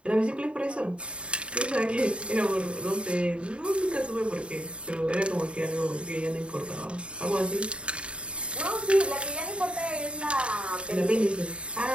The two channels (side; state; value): left; late; 0.057 ms